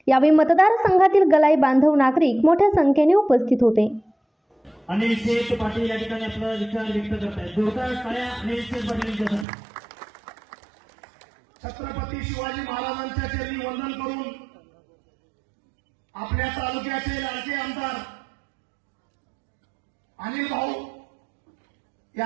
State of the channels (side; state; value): left; drops out; at 9.5 s